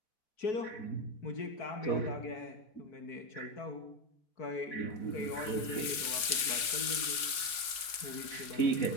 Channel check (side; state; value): right; late; 4.8 ms